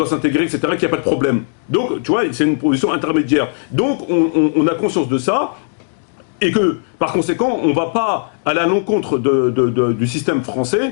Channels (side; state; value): right; silent; digital silence